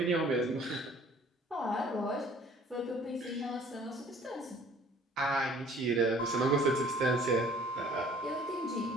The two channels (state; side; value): normal; both; correlation 0.53